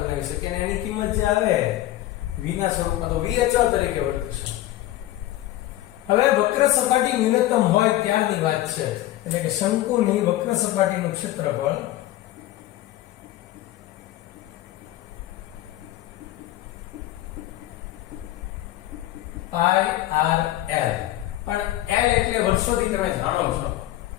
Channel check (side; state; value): right; quieter; 15.2 dB